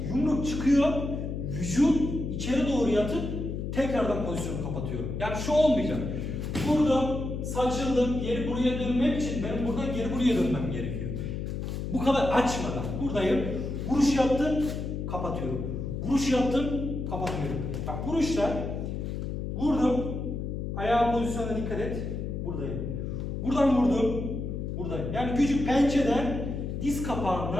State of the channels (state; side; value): noise; left; hum, 4 dB below the sound